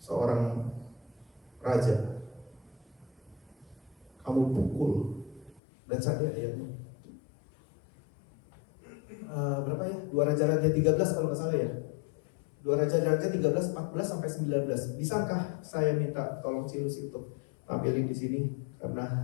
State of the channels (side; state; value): right; drops out; at 5.6 s